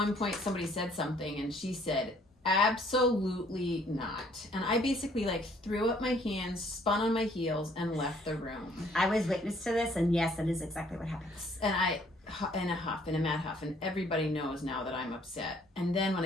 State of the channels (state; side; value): normal; both; correlation 0.62